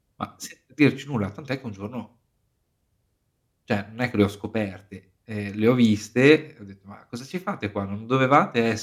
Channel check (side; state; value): both; identical; correlation 1.00